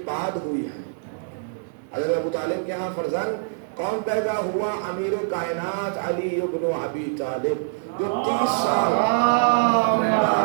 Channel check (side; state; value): left; silent; 62 dB below the other